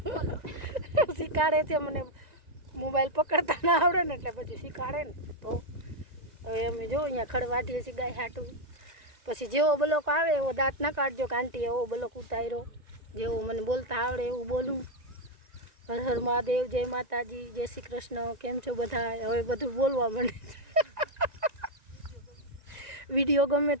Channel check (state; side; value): late; left; 1.9 ms